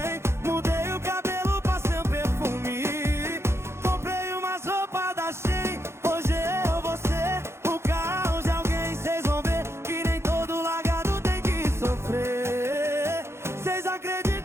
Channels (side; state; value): left; late; 0.13 ms